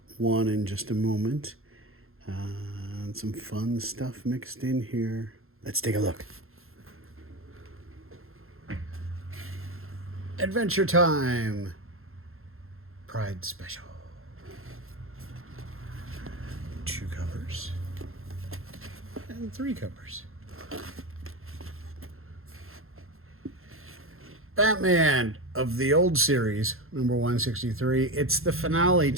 one in just a moment. And some fun stuff mixed in here. Let's take a look. Adventure Time Pride Special. 2 covers and 3 covers. Batman of the old series, number 163. It's the finale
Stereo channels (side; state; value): left; late; 0.61 ms